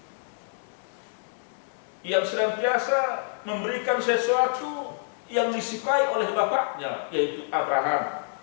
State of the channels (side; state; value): right; silent; digital silence